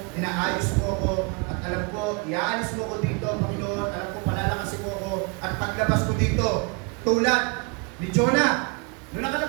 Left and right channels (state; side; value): quieter; left; 31.7 dB